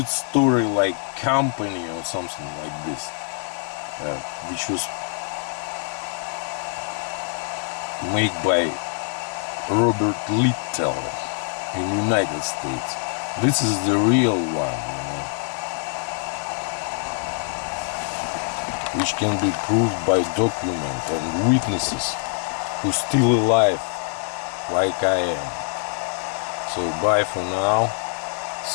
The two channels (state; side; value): silent; right; 58 dB below the other